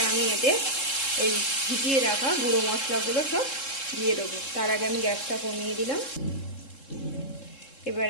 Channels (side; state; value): right; late; 3.7 ms